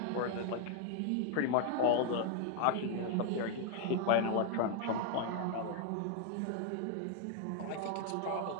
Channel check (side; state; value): both; different; correlation 0.00